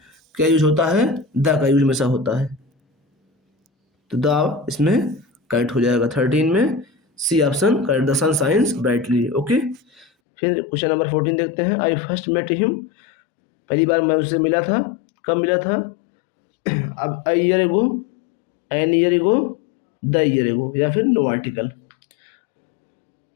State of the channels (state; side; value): drops out; right; at 10.1 s